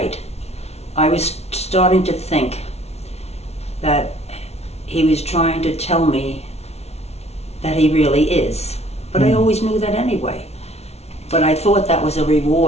I was starting to think that he was trying to tell me that he really is. But I always knew that anyway. But I thought that was a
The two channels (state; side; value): late; right; 0.31 ms